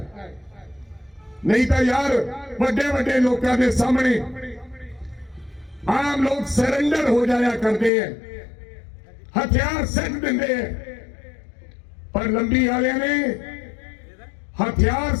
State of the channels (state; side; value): drops out; right; at 7.9 s